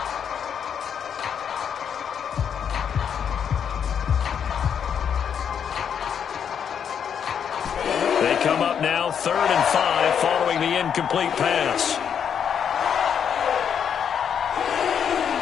They come up now 3rd and 5 following the incomplete pass.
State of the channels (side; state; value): right; quieter; 7.9 dB